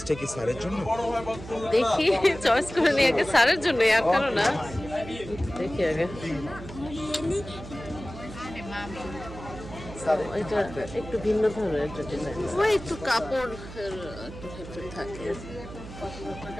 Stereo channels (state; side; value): noise; right; hum, 13 dB below the sound